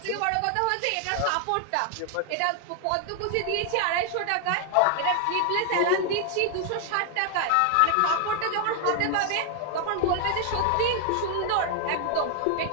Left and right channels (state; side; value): different; both; correlation 0.00